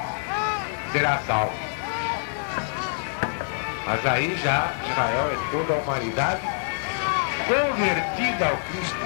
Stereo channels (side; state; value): right; silent; digital silence